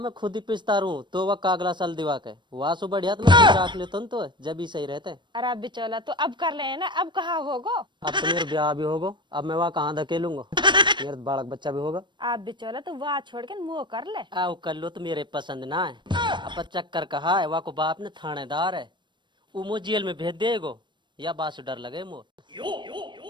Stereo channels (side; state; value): left; late; 0.22 ms